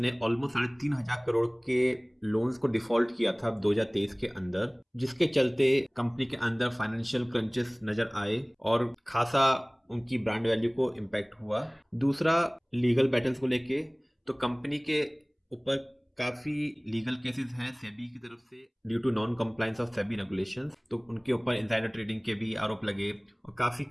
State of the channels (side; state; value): both; identical; correlation 1.00